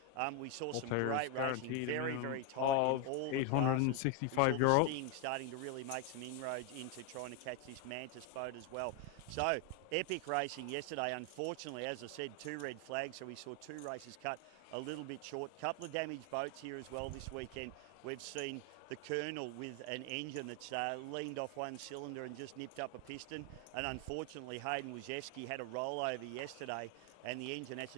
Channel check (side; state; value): both; different; correlation 0.01